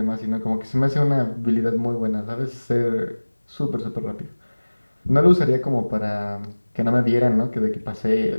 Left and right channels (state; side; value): inverted; both; correlation -1.00